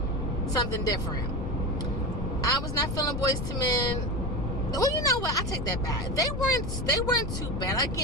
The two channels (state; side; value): noise; left; rumble, 4 dB below the sound